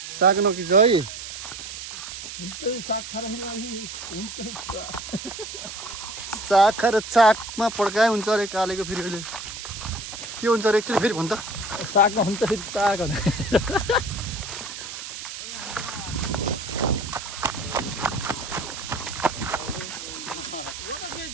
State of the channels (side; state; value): right; noise; hiss, 9 dB below the sound